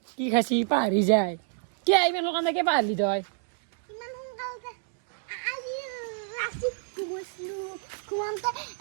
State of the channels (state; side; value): silent; left; digital silence